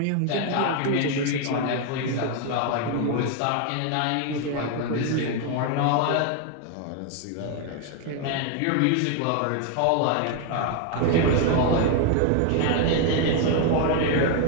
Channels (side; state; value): both; different; correlation 0.01